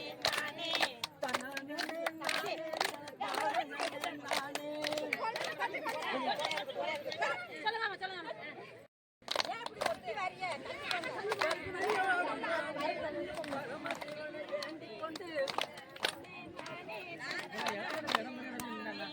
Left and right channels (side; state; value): both; identical; correlation 1.00